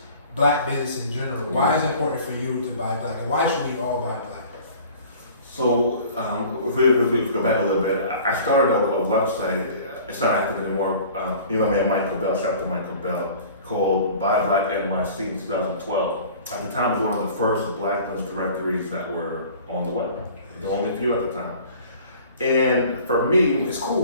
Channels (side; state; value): both; inverted; correlation -0.46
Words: black business in general. Why is it important for you to buy black, and why should we all buy black? So if we go back a little bit, I started a website. It's not active anymore. My man Michael Bell, shout out to Michael Bell, called Buy Black NYC in 2012. at the time, it was one of the first Black business directories that were on the web. The only few at the time. And for me, It's